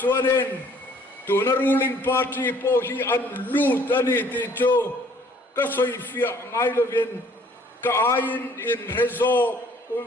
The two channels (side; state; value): both; normal; correlation 0.58